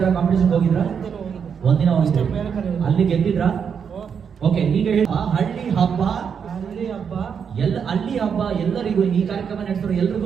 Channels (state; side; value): quieter; left; 7.0 dB